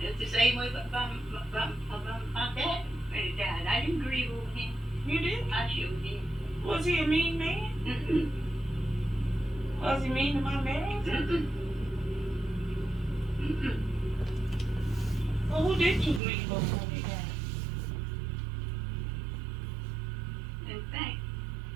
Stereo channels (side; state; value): left; drops out; at 16.2 s